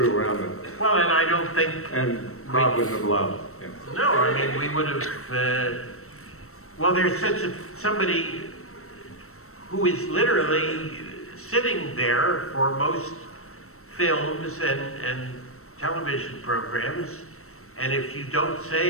around with. Well, and I don't think. And Rob wouldn't have allowed it. Yeah. No, I mean we would have. Well, there's somebody who is literally sitting there for most films and television programs, and if you don't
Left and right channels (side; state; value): right; late; 0.63 ms